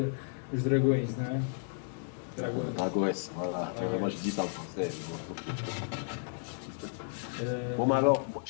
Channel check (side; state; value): right; silent; digital silence